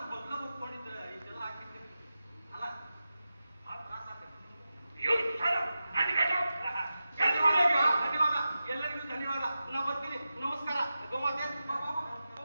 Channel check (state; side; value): inverted; both; correlation -0.92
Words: ಬಗ್ಗ ಒಪ್ಕೊಂಡಿದ್ರೆ ಇದೆಲ್ಲ ಹಾಕಿದ್ರಿ ಅಲ್ಲ ಧನ್ಯವಾದ, ಎಲ್ಲರಿಗೂ ಧನ್ಯವಾದ. ನಾ ಬರ್ತೀನಿ. ನಮಸ್ಕಾರ ಗೋಮಾತೆ.